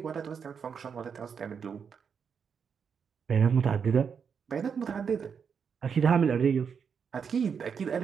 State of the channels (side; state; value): left; quieter; 6.6 dB